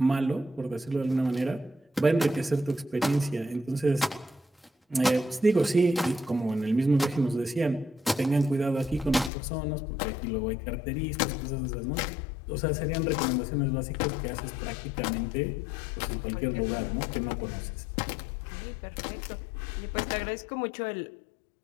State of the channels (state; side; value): drops out; right; at 9.3 s